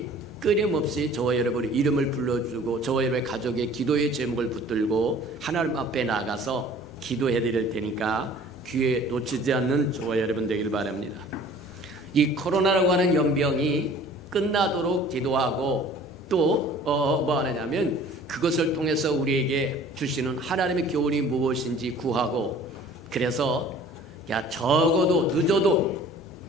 끊임없이 저와 여러분의 이름을 불러주고 저와 여러분의 가족의 기도의 제목을 붙들고 하나님 앞에 나가서 기도해 드릴 테니까 귀에 놓치지 않는 저와 여러분 되길 바랍니다. 이 코로나라고 하는 연병이 끝나도록 기도하고 또 뭐 하느냐면 그것을 통해서 우리에게 주시는 하나님의 교훈이 무엇인지 구하고 그래서 적어도 늦어도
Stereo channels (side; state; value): both; normal; correlation 0.49